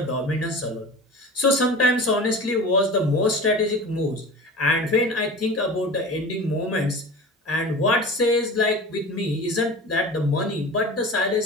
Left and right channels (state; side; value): normal; both; correlation 0.35